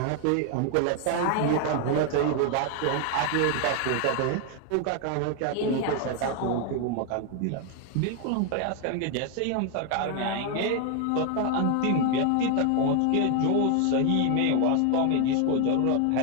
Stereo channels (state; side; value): different; both; correlation 0.01